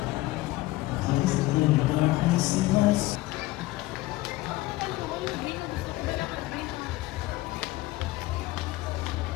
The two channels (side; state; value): right; quieter; 18.5 dB